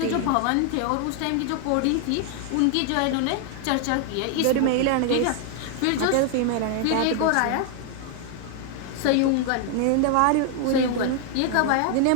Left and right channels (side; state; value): both; different; correlation 0.00